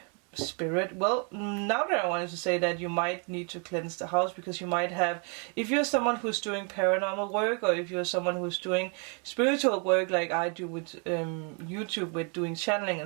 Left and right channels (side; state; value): left; quieter; 37.9 dB